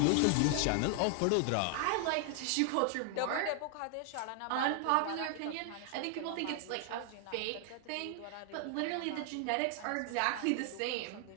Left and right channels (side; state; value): both; different; correlation 0.00